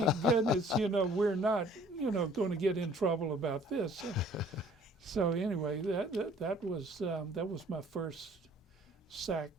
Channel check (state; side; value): normal; both; correlation 0.55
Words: goodness, we're not, going to get in trouble about this. So anyway, that was my first SAC